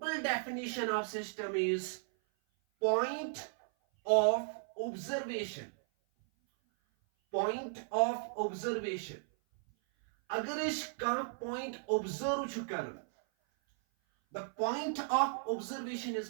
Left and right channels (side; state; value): left; silent; 54 dB below the other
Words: definition of system is point of observation. Point of observation. अगर इसका पॉइंट ऑब्जर्व चुकर, the point of observation is